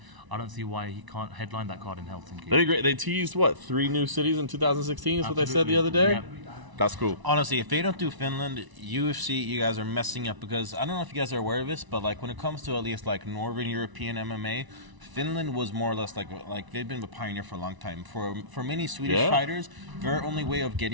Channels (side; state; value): left; late; 1.0 ms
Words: I don't see why he can't headline that card in Helsinki. That'd be great. They teased, 3 new cities in 2016 is what they said the other day? Yeah. That's cool. Honestly, if they don't do Finland, UFC, you guys are messing up, because I don't know if you guys are aware of this, but when it comes to at least Northern European MMA, Finland was more or less like they've been a pioneer for a long time. For many Swedish fighters, their only way of